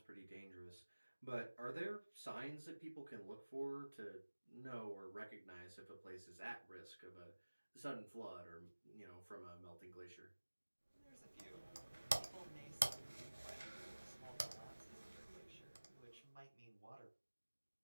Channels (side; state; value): both; inverted; correlation -1.00